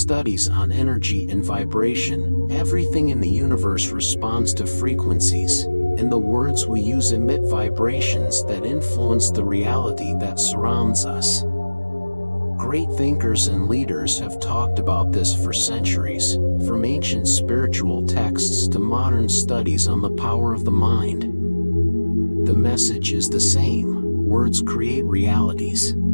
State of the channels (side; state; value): both; inverted; correlation -1.00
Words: on energy and vibration, everything in the universe responds to frequencies, and the words we use emit vibrations that influence the reality that surrounds us. Great thinkers and leaders have talked about this for centuries, from ancient spiritual texts to modern studies on the power of the mind. The message is the same. Words create realities.